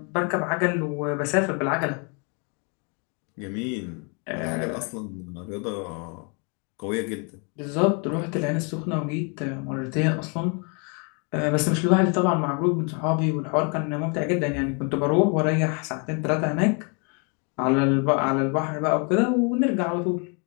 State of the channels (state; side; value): quieter; right; 35.6 dB